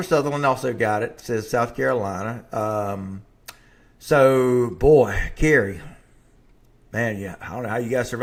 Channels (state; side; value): identical; both; correlation 1.00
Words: Sutherland also got it. Says South Carolina. So, boy, Carrie. Man, yeah, I don't know how you guys